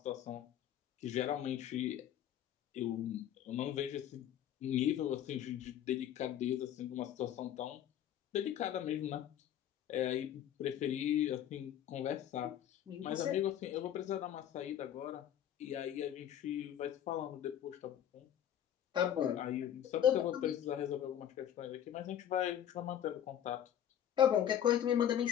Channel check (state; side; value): quieter; right; 10.5 dB